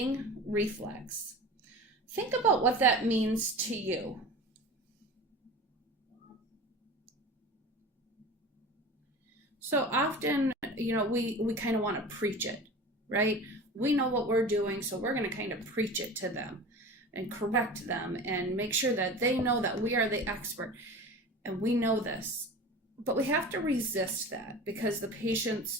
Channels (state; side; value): normal; both; correlation 0.35